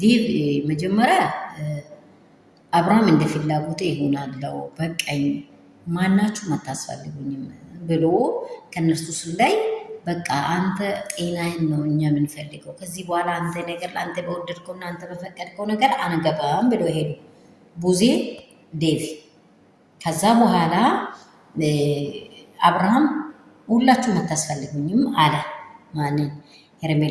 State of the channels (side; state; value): both; identical; correlation 1.00